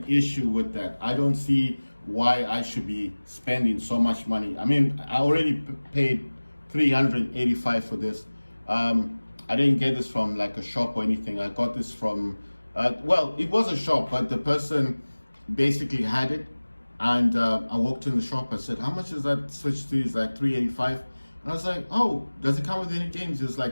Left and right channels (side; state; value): both; inverted; correlation -1.00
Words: issue with that. I don't see why I should be spending so much money. I mean, I already paid $385 for this. I didn't get this from like a shop or anything. I got this from, well, it was a shop, but the person basically had it. And I walked in the shop, I said, how much is that Switch 2? It's like $385. And I was like, oh, does it come with any games? It's